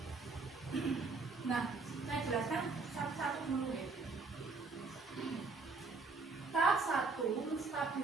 Nah, saya jelaskan satu-satu dulu ya. Tahap 1,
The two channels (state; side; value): quieter; left; 4.1 dB